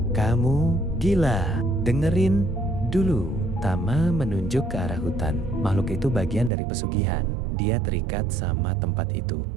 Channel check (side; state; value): left; drops out; at 6.5 s